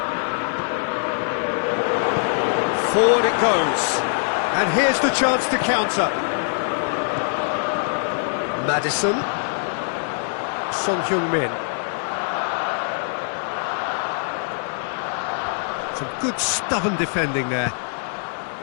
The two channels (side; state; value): right; silent; 63 dB below the other